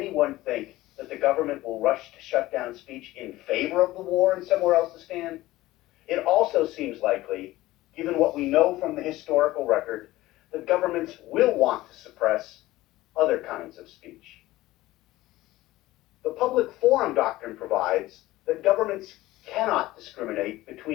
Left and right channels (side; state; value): right; quieter; 17.3 dB